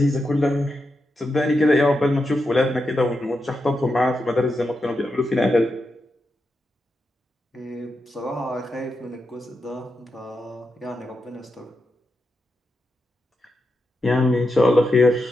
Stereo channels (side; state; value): both; normal; correlation 0.86